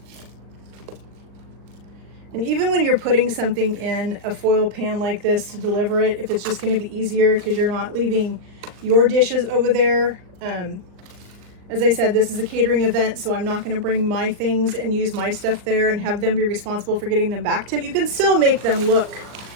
And even when you're putting something in a foil pan like this to deliver it, if it's just going to be easier because you're not leaving your dishes over there. As I said, this is a catering event, so I'm not going to bring my things and use my stuff there and have them be responsible for getting them back to me. You can still make them look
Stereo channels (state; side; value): late; left; 39 ms